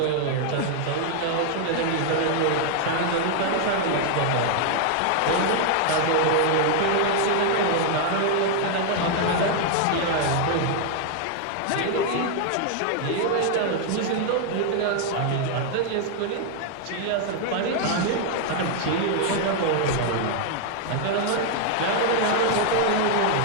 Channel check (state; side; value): different; both; correlation 0.00